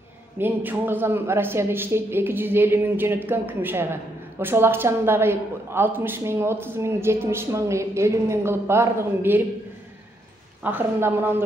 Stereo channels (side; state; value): both; normal; correlation 0.76